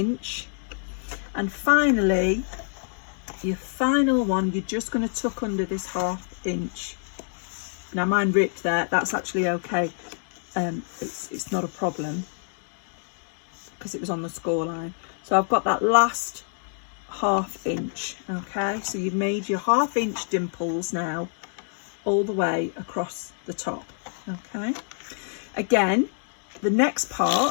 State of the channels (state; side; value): silent; right; digital silence